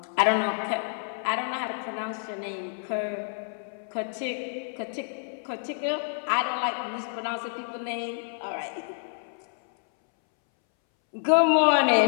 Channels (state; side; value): silent; right; 59 dB below the other